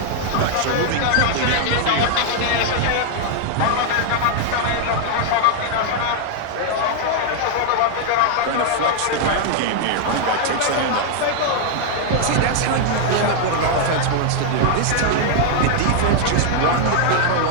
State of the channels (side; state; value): both; different; correlation 0.00